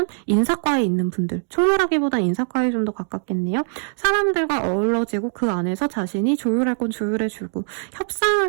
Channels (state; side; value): silent; left; digital silence